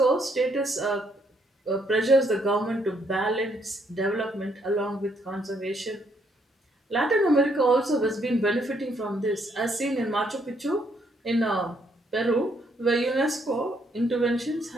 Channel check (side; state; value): both; normal; correlation 0.71